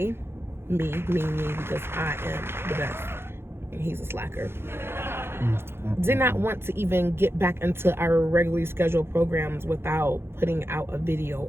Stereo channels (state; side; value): late; left; 0.11 ms